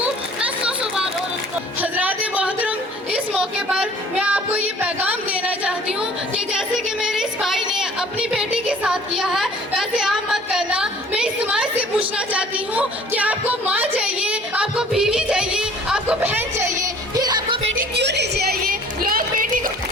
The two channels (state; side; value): normal; both; correlation 0.51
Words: मैं 100 बार औरत को। हजरात मोहतरम, इस मौके पर मैं आपको ये पैगाम देना चाहती हूँ कि जैसे कि मेरे इस भाई ने अपनी बेटी के साथ किया है, वैसे आप मत करना। मैं इस समाज से पूछना चाहती हूँ कि आपको माँ चाहिए, आपको बीवी चाहिए, आपको बहन चाहिए, फिर आपको बेटी क्यों नहीं चाहिए? लोग बेटी को